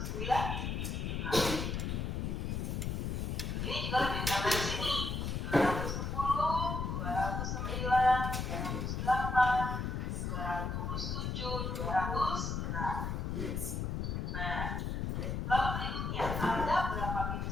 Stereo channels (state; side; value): noise; left; rumble, 1 dB below the sound